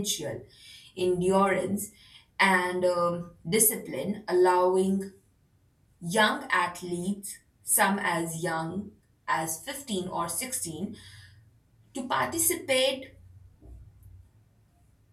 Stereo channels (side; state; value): both; identical; correlation 1.00